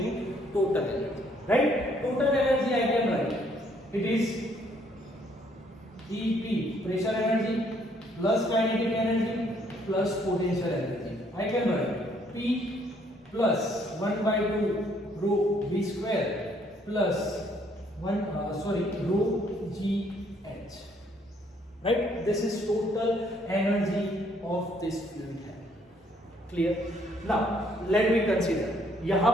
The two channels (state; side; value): normal; both; correlation 0.66